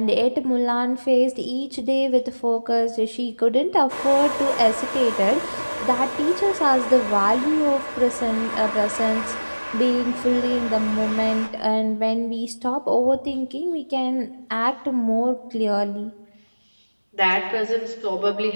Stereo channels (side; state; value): both; inverted; correlation -1.00